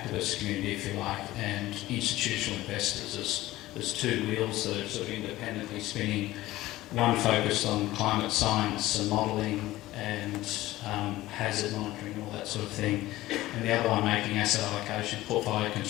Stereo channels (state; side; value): quieter; right; 16.8 dB